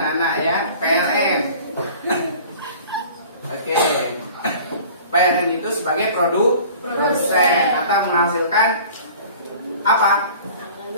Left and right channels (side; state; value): both; inverted; correlation -0.45